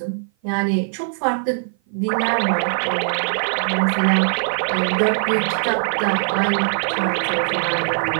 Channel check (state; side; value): silent; left; 56 dB below the other